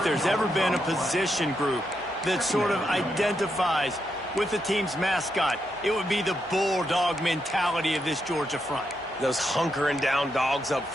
there's ever been a position group that sort of identifies with the team's mascot, it would be the bulldog mentality of this Georgia front. Those hunkering down dogs up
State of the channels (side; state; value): both; normal; correlation 0.82